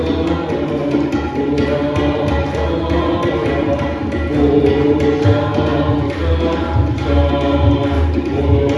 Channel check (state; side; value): identical; both; correlation 1.00